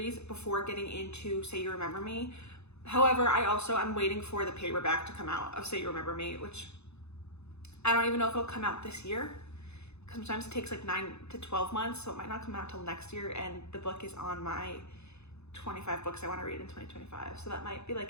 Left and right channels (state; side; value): late; right; 0.80 ms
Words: before getting into Say You Remember Me. However, I'm waiting for the paperback to come out of Say You Remember Me, which I don't even know if it'll come out this year. Sometimes it takes like 9 to 12 months, so it might not come out till next year, and the book is on my 25 books I want to read in 2025. So that might be like